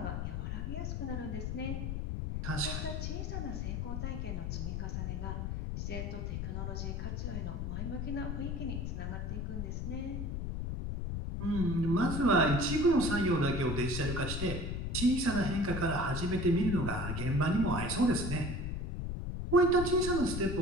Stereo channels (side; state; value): left; noise; rumble, 3 dB below the sound